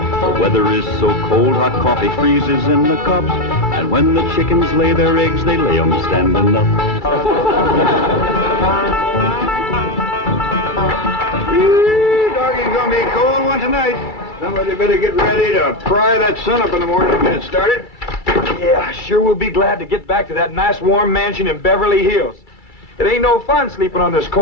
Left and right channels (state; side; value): late; right; 2.3 ms